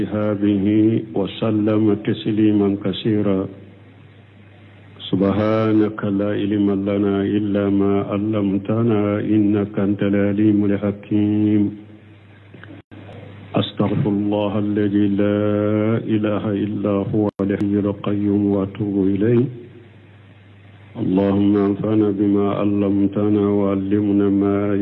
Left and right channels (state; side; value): identical; both; correlation 1.00